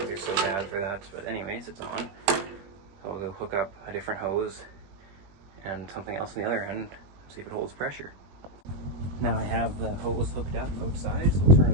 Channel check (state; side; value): late; left; 20 ms